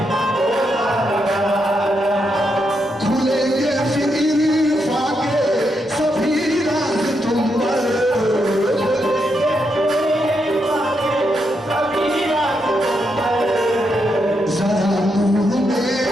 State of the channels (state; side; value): normal; both; correlation 0.81